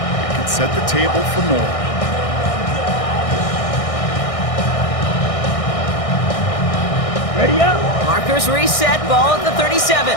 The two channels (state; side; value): late; right; 1.6 ms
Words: can set the table for more. Ready up. Markers reset, ball at the